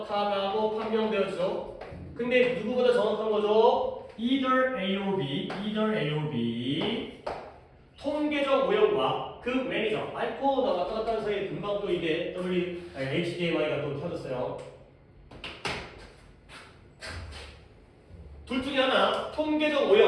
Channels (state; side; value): identical; both; correlation 1.00